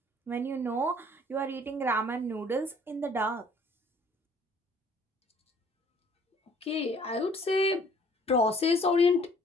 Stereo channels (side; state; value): both; normal; correlation 0.57